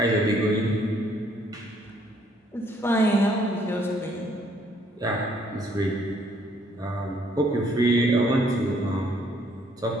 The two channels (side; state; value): both; normal; correlation 0.65